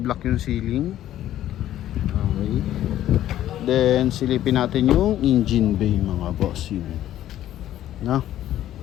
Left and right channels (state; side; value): quieter; right; 12.6 dB